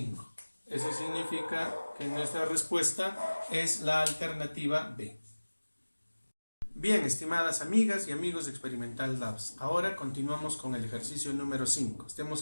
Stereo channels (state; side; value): inverted; both; correlation -1.00